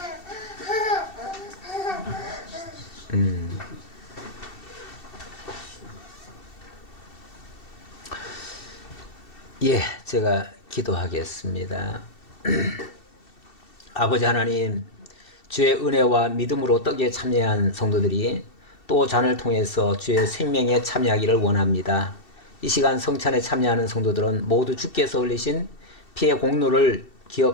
예, 제가 기도하겠습니다. 아버지 하나님, 주의 은혜와 믿음으로 떡에 참여한 성도들이 또 잔을 통해서 주의 생명에 참여하기를 원합니다. 이 시간 성찬에 참여하는 성도들은 모두 주께서 흘리신 피의 공로를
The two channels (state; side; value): late; right; 2.7 ms